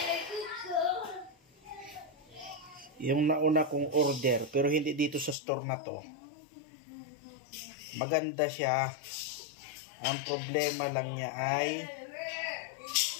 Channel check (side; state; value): right; drops out; at 5.4 s